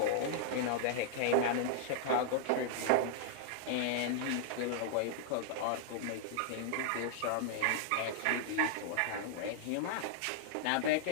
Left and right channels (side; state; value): both; different; correlation -0.01